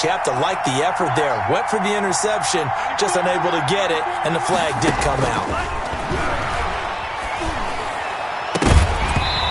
you have to like the effort there. Went for the interception, just unable to get it, and the flag did come out.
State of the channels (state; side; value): identical; both; correlation 1.00